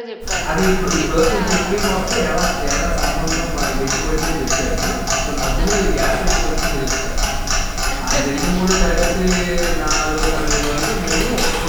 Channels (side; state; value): both; identical; correlation 1.00